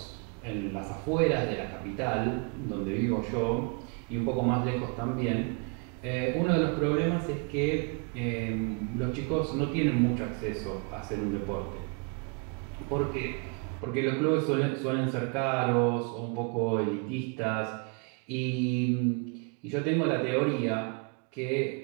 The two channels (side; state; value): left; quieter; 35.9 dB